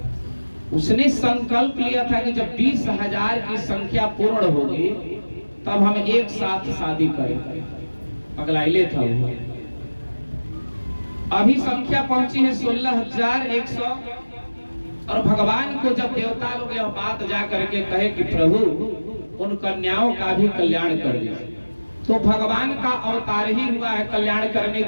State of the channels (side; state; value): both; inverted; correlation -1.00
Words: उसने संकल्प लिया था कि जब 20,000 की संख्या पूर्ण होगी तब हम एक साथ शादी करेंगे। पगलाइले था वो। अभी संख्या पहुंची है 16,100। और भगवान को जब देवता लोग यह बात जा करके कहे कि प्रभु उन कन्याओं का भी कल्याण कर दीजिए, तो भगवान का अवतार ही हुआ है कल्याण करने